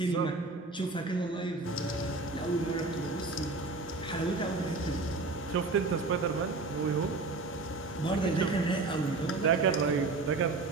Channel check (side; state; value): left; quieter; 3.6 dB